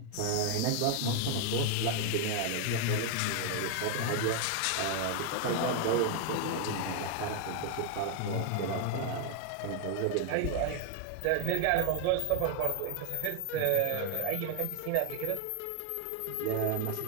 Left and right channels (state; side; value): different; both; correlation 0.01